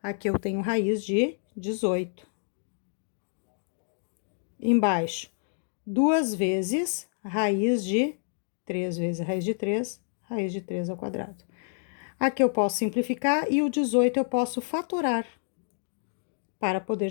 aqui eu tenho raiz de 18. Embaixo, 2 vezes raiz de 3 vezes raiz de 3 ao quadrado. Aqui eu posso simplificar e o 18 eu posso fatorar para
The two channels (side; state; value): right; silent; digital silence